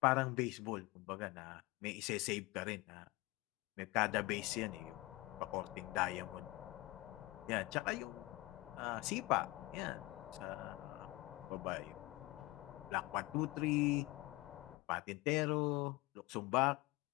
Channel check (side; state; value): right; quieter; 20.8 dB